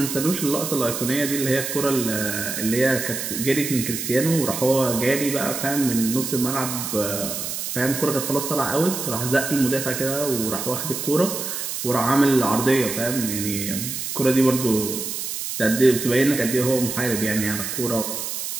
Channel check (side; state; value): right; noise; hiss, 5 dB below the sound